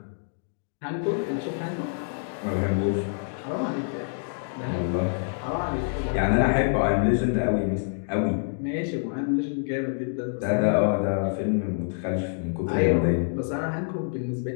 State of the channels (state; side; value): silent; right; digital silence